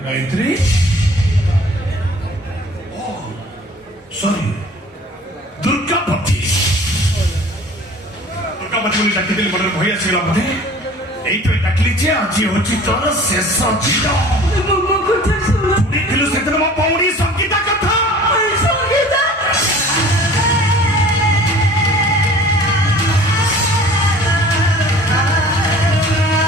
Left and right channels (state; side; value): normal; both; correlation 0.47